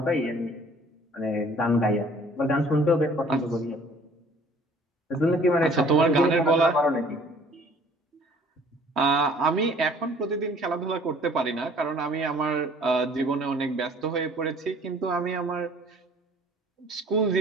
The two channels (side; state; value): both; normal; correlation 0.54